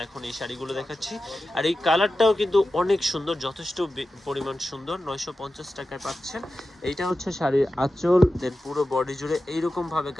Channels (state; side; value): normal; both; correlation 0.93